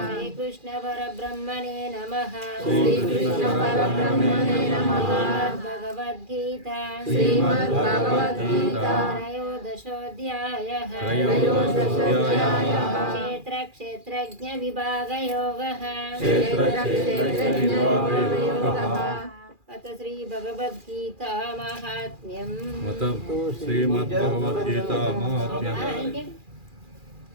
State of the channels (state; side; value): late; left; 2.4 ms